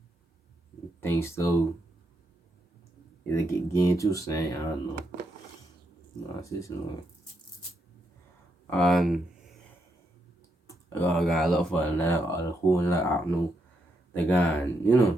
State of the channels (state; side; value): normal; both; correlation 0.79